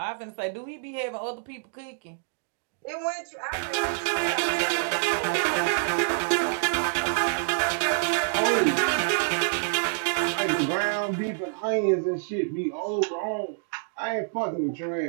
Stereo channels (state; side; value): silent; left; digital silence